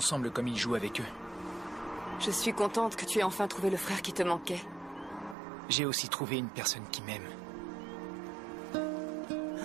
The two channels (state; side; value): drops out; left; at 5.4 s